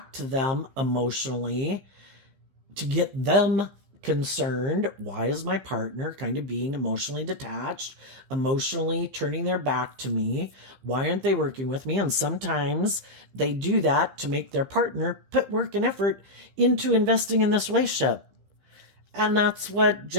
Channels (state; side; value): late; left; 15 ms